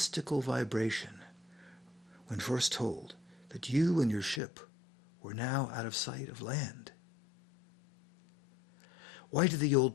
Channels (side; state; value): right; drops out; at 4.4 s